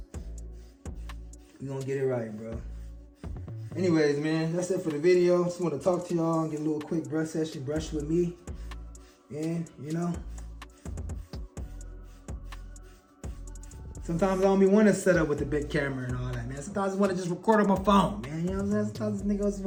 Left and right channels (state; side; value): identical; both; correlation 1.00